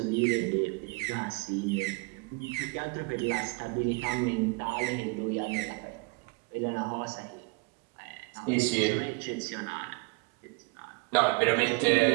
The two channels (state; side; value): quieter; left; 29.0 dB